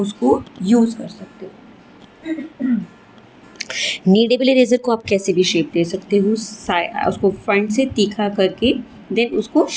यूज़ कर सकते हो। नीडेबल इरेज़र को आप कैसे भी शेप दे सकते हो, उसको फ्रंट से तीखा करके देन उसको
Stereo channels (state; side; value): identical; both; correlation 1.00